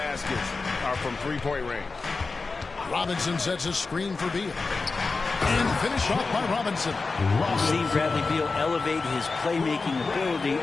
are from three-point range. Robinson sets a screen for Beal. And finish off by Robinson. We've seen Bradley Beal elevate his playmaking ability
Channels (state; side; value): quieter; right; 4.0 dB